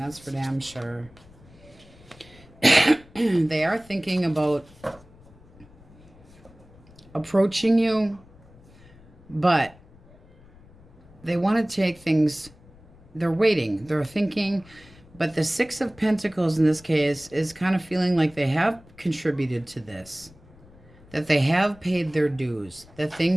for damn sure. They are thinking about approaching you, but they want to take things, they're waiting, they're thinking. But the Six of Pentacles in this case is kind of feeling like they have contributed to this, that they have paid their dues, that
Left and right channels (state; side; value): noise; left; rumble, 25 dB below the sound